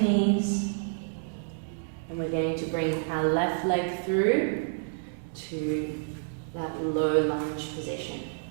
and we're going to bring our left leg through to that low lunge position.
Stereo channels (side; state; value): left; silent; digital silence